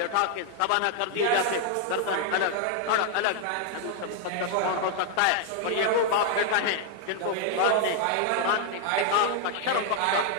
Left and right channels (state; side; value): different; both; correlation 0.00